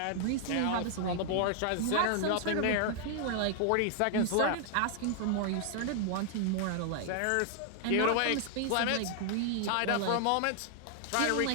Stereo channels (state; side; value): different; both; correlation 0.00